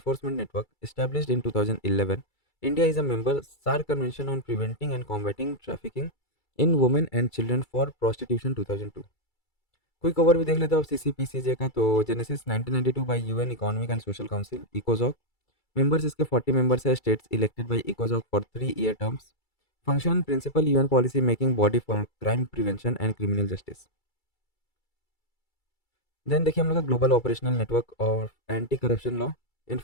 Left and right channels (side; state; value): right; late; 2.3 ms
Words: network established in 2011। India is a member SAARC convention on preventing and combating trafficking in women and children for prostitution 2002। Quick over भी देख लेते हो अब CCPCJ का, तो genesis 1992 by UN economic and social council इकोजॉक। Members इसके 40 members है, स्टेट्स इलेक्टेड बाय इकोजॉक for 3-year terms. Function principal UN policy making body for crime prevention and criminal justice. Then देखिए हम लोग का ग्लोबल ऑपरेशनल नेटवर्क और anti corruption law